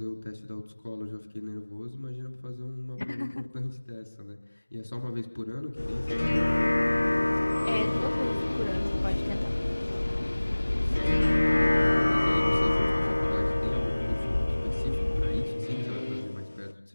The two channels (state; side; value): inverted; both; correlation -1.00